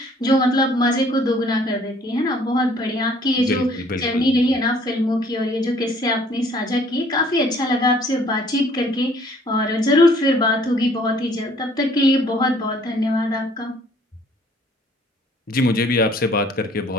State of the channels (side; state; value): both; normal; correlation 0.58